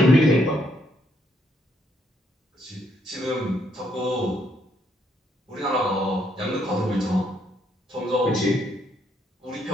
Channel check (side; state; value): both; normal; correlation 0.73